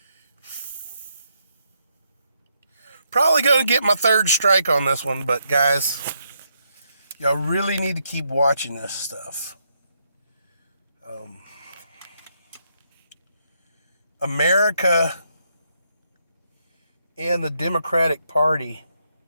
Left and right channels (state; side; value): inverted; both; correlation -0.78